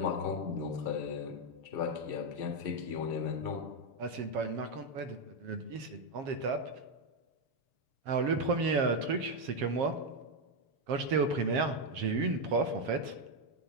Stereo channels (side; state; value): left; late; 7.4 ms